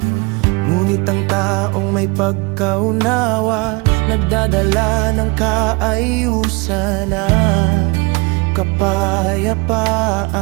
Ngunit ang taong may pagkaunawa, nagdadala ng kaayusan at kapayapaan.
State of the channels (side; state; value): left; quieter; 27.3 dB